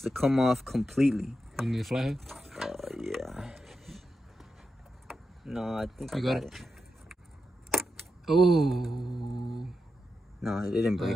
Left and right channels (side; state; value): both; normal; correlation 0.88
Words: to come off completely. You need a flathead? Yeah. No, I think you I got it. Oh. No, it didn't break.